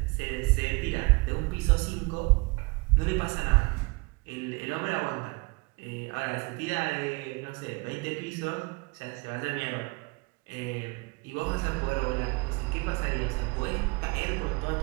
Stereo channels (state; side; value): quieter; left; 27.0 dB